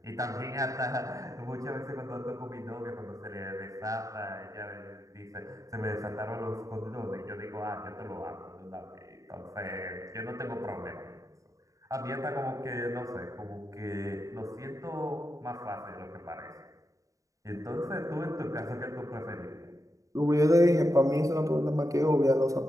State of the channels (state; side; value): late; left; 0.16 ms